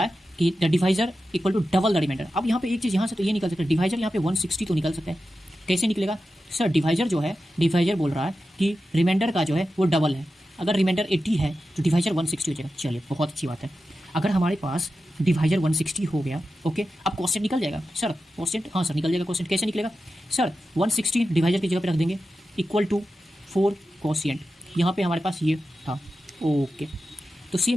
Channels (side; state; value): both; normal; correlation 0.92